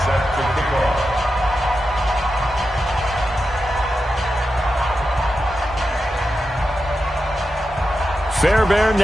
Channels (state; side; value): normal; both; correlation 0.89